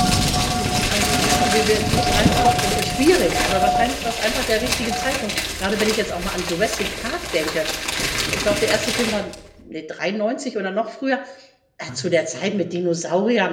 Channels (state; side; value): identical; both; correlation 1.00